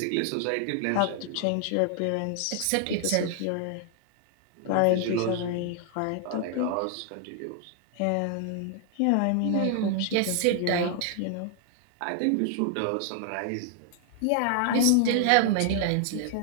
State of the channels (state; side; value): different; both; correlation 0.00